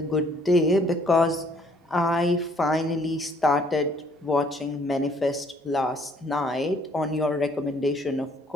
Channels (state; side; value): normal; both; correlation 0.62